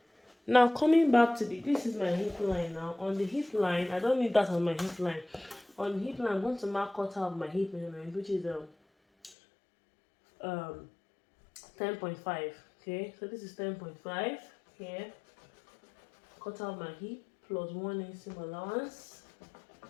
now coming back to this is my hip line. Now on the hip line, I don't need that on my hip line. On the hip line, I'm going to mark quarter of my hip measurement, which is 10.5. Okay, so this is 10.5 here. Quarter of my hip plus 1 inch seam allowance.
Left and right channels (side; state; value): right; drops out; at 9.3 s